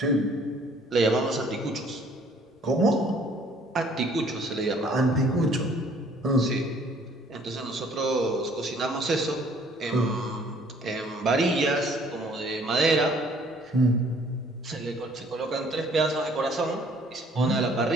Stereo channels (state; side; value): normal; both; correlation 0.58